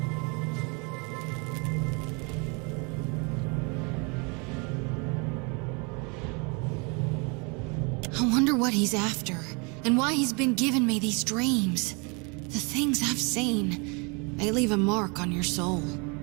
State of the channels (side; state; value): left; quieter; 31.9 dB